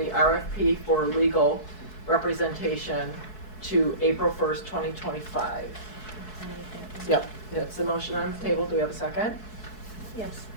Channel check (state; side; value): late; right; 4.7 ms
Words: RFP for legal representation to April 1st, 2025. Yep, that's the motion on the table. Do we have a second? Yes,